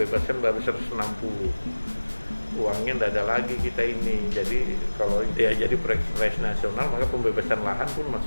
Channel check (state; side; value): inverted; both; correlation -1.00